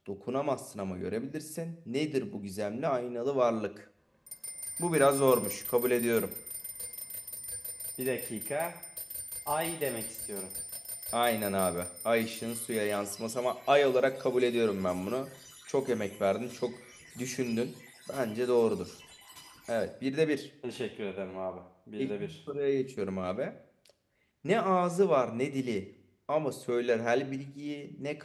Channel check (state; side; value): identical; both; correlation 1.00